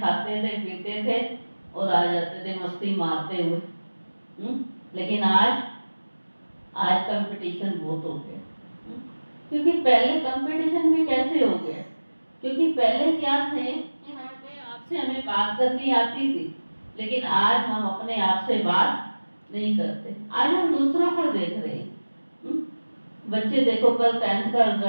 थे, पीते थे और आ जाते थे मस्ती मारते हुए। लेकिन आज कंपटीशन बहुत हो गया। क्योंकि पहले कंपटीशन भी कैसे हो गया, क्योंकि पहले क्या थे कि हमें बात करनी आती थी, लेकिन आज हम अपने आप से बात नहीं करते। आज हम दूसरों को देख रहे हैं। बच्चे देखो, कल 10th का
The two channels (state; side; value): inverted; both; correlation -1.00